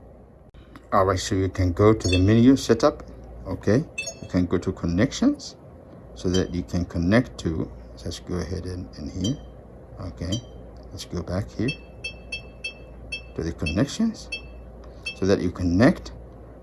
All right, so you can go to the menu setup. Okay, you can go to connections so that you can connect to, let's go ahead and here. Okay, let's go back here to the connections so that you connect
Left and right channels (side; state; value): both; identical; correlation 1.00